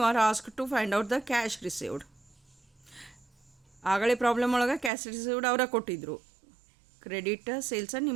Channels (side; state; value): left; drops out; at 4.9 s